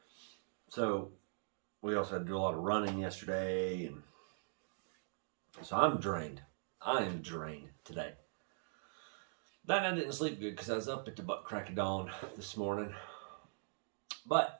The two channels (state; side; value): silent; left; digital silence